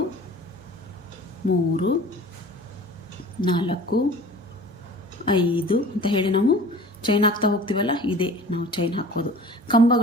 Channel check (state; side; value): normal; both; correlation 0.43